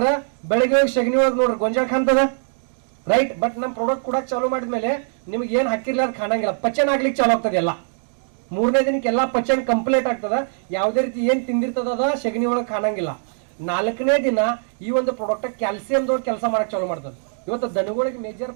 ಬೆಳಿಗ್ಗೆ ಸಗಣಿ ಒಳಗೆ ನೋಡ್ರಿ ಗೊಂಜಾಳ ಕಾಣ್ತದ. ರೈಟ್. ಬಟ್ ನಮ್ಮ ಪ್ರಾಡಕ್ಟ್ ಕೂಡ ಚಾಲೂ ಮಾಡಿದ್ಮೇಲೆ ನಿಮ್ಗೆ ಏನ್ ಹಾಕಿರ್ಲ ಅದು ಕಾಣಂಗಿಲ್ಲ, ಪಚನ ಆಗ್ಲಿಕ್ಕೆ ಚಾಲು ಆಗ್ತದೆ ಎಲ್ಲ. 3ನೇ ದಿನಕ್ಕೆ ಎಲ್ಲ ಪಚನ ಕಂಪ್ಲೀಟ್ ಆಗ್ತದ. ಯಾವುದೇ ರೀತಿ ಏನ್ ತಿಂದಿರ್ತದ ಅದ ಸಗಣಿ ಒಳಗೆ ಕಾಣಂಗಿಲ್ಲ. 4ನೇ ದಿನ ಈ ಒಂದು ಪ್ರಾಡಕ್ಟ್ ಕ್ಯಾಲ್ಸಿಯಂದವ್ರು ಕೆಲಸ ಮಾಡಕ್ ಚಾಲು ಮಾಡ್ತದೆ. ಇವತ್ತು ದನಗಳಿಗೆ ಮೇಜರ್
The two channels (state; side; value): silent; left; digital silence